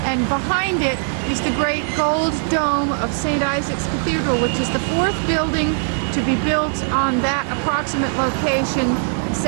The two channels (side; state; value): left; silent; digital silence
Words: And behind it is the great gold dome of St. Isaac's Cathedral, which is the 4th building to be built on that approximate location.